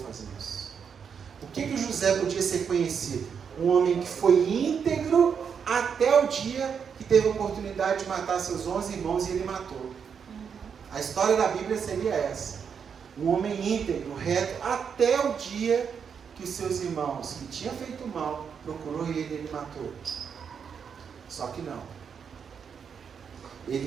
isso. O que José podia ser conhecido? Um homem que foi íntegro até o dia que teve a oportunidade de matar seus 11 irmãos e ele matou. A história da Bíblia seria essa. Um homem íntegro, reto, até o dia que os seus irmãos, que tinham feito mal, procurou ele matou. Só que não.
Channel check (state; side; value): quieter; left; 6.9 dB